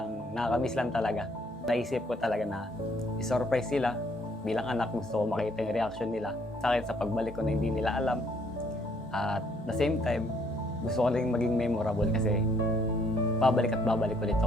nakakamiss lang talaga. Naisip ko talaga na i-surprise sila. Bilang anak, gusto ko makita yung reaction nila sa akin sa pagbalik ko na hindi nila alam. At the same time, gusto ko rin maging memorable kasi babalik at babalik ulit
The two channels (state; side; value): normal; both; correlation 0.66